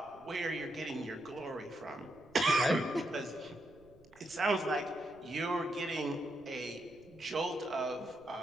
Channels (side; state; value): right; noise; rumble, 26 dB below the sound